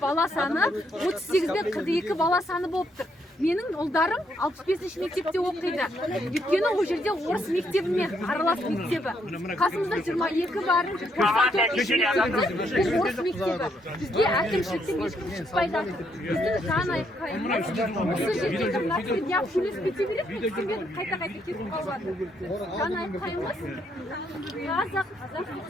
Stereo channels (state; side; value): normal; both; correlation 0.74